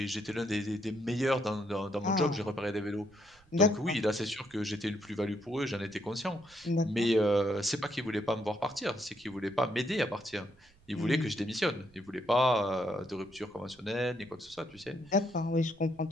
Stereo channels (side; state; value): right; noise; rumble, 28 dB below the sound